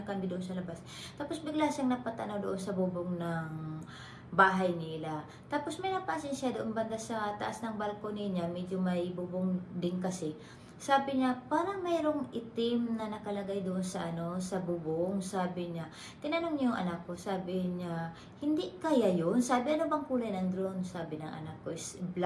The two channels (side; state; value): both; identical; correlation 1.00